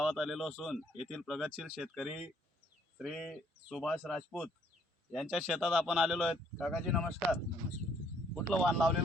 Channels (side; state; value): both; normal; correlation 0.65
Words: आलेलो असून येथील प्रगतशील शेतकरी श्री सुभाष राजपूत यांच्या शेतात आपण आलेलो आहेत। काकाजी नमस्कार। कुठलं वाण